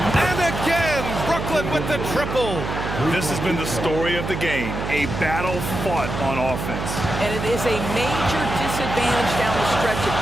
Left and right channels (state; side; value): noise; right; hum, 5 dB below the sound